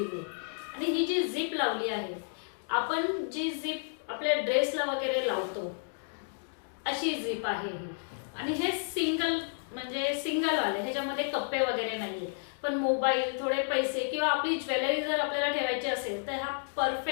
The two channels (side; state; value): right; silent; digital silence